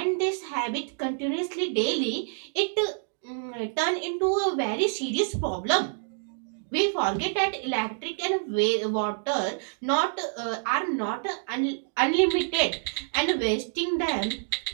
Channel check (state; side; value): silent; left; digital silence